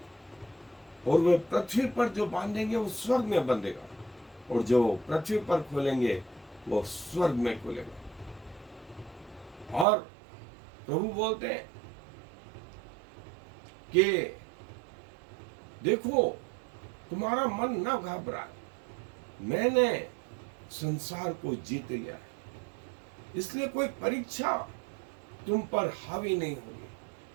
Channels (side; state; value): left; drops out; at 9.9 s